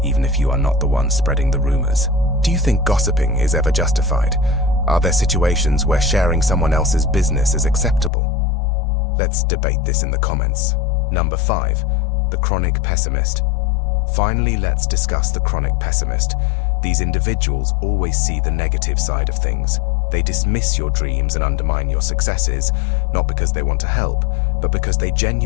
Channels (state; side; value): drops out; right; at 8.1 s